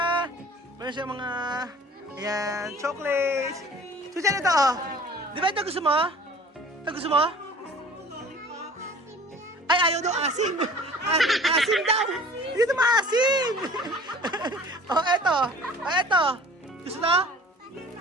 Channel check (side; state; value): both; normal; correlation 0.46